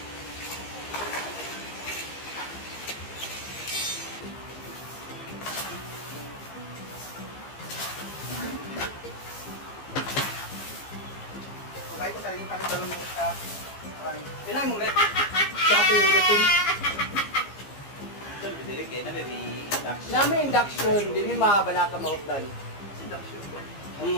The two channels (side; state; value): right; late; 15 ms